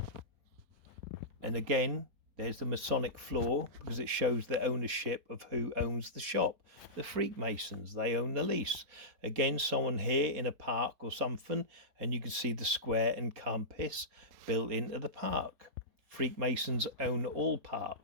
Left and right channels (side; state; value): left; late; 4.1 ms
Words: And again, there's the Masonic floor, because it shows the ownership of who owns the shop. The Freakmasons, they own the lease. Again, someone here in a park or something, and you can see the square and compass built into the park. Freakmasons own all